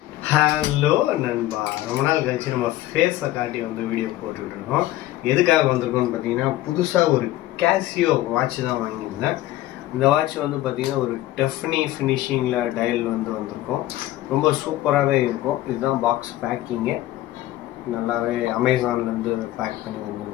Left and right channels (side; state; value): right; quieter; 15.5 dB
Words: Hello நண்பா, ரொம்ப நாள் கழிச்சு நம்ம ஃபேஸை காட்டி வந்து வீடியோ போட்டுட்டு இருக்கோம். எதுக்காக வந்திருக்கோம்னு பார்த்தீங்கன்னா, புதுசாக ஒரு கேசியோ வாட்ச் தான் வாங்கியிருந்தேன். இந்த வாட்ச் வந்து பார்த்தீங்கன்னா ஒரு டெஃப்னி ஃபினிஷிங்கில் டயல் வந்து வந்திருக்கும். ரொம்ப சூப்பராகவே இருக்கும். இதுதான் பாக்ஸ் பேக்கிங்கு, நல்லாவே அமேசான்லேருந்து பேக் பண்ணி